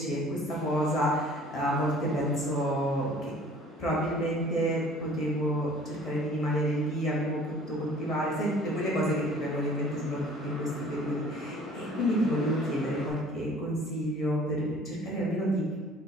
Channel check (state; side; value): normal; both; correlation 0.51